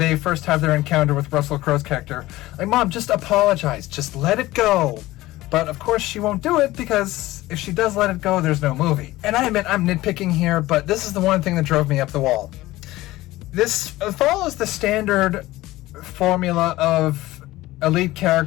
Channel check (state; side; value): quieter; right; 17.5 dB